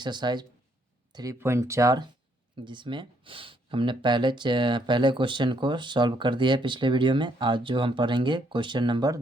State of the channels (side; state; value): both; normal; correlation 0.71